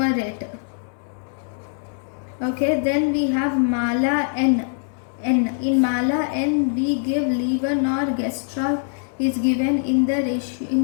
Okay, then we have Mala-N. In Mala-N, we give levonorgestrel is given in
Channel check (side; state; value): right; silent; 64 dB below the other